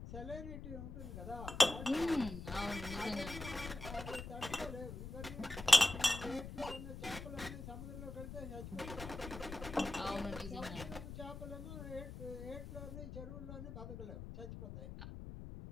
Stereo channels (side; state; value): left; noise; rumble, 9 dB below the sound